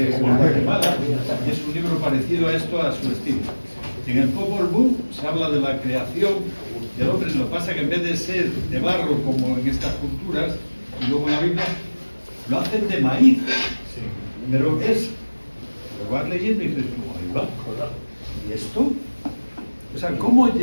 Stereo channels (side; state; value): both; inverted; correlation -1.00